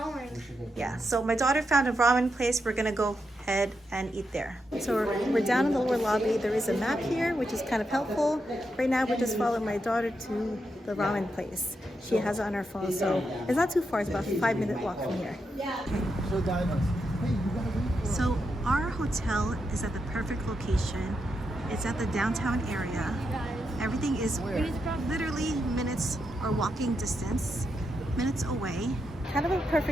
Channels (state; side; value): normal; both; correlation 0.84